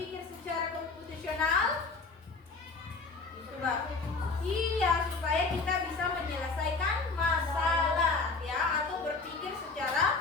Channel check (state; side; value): quieter; right; 4.1 dB